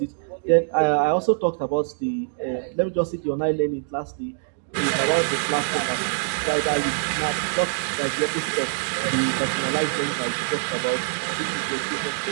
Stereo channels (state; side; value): silent; left; digital silence